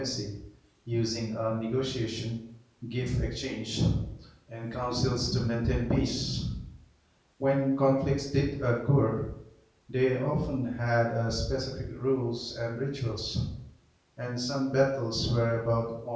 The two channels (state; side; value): identical; both; correlation 1.00